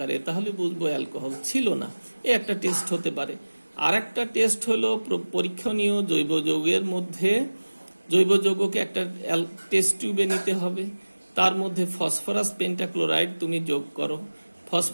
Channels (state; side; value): inverted; both; correlation -1.00